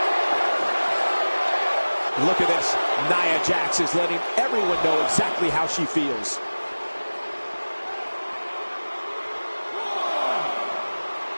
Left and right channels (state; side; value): inverted; both; correlation -1.00